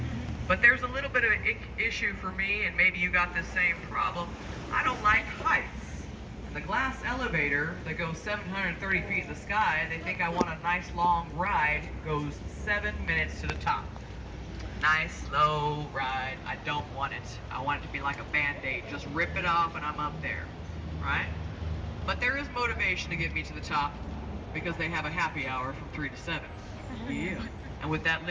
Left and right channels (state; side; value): identical; both; correlation 1.00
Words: But there's a little bit of an issue for me, and maybe you got the same problem. I don't like heights. The glass elevator that goes 730 feet in the sky, they think I want a nice long ride, goes 7 minutes to the top. Nice, slow ride. I don't want it. I want it to be like a Band-Aid. Just rip it off and I'm up there, right? But there is motivation to get me to the top because they have a happy hour from 3 to 7. Yeah. And with that